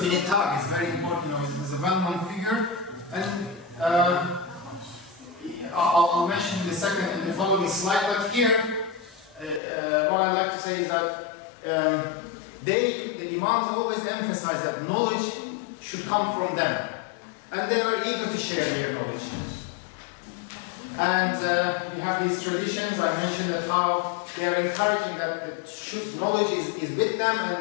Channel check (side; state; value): right; drops out; at 9.6 s